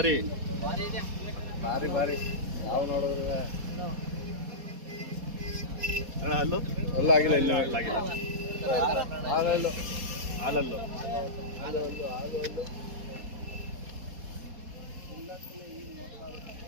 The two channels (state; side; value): late; left; 4.2 ms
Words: ಭಾರಿ ನಾವು ನೋಡಿದ್ರೆ ಅಲ್ಲೂ ಅಲ್ಲ ಆಗಿಲ್ಲ, ಇಲ್ಲ ಆಗಿಲ್ಲ. ಹಾಲಲ್ಲು